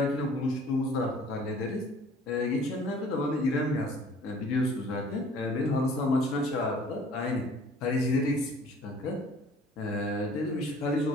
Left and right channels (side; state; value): both; normal; correlation 0.53